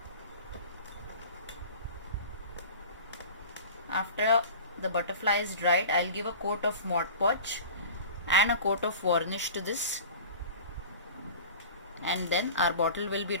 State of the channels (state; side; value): inverted; both; correlation -0.38